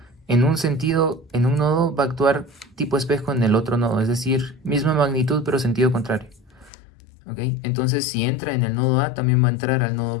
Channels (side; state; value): right; drops out; at 6.7 s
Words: un sentido, en un nodo, va a actuar tipo espejo en el otro nodo, es decir, misma magnitud pero sentido contrario. ¿Ok? Entonces si entra en el nodo A, también va a entrar al nodo